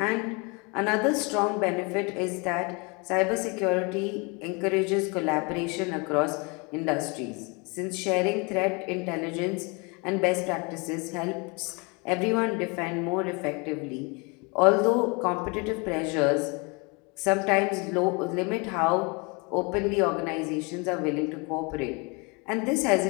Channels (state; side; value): quieter; right; 30.2 dB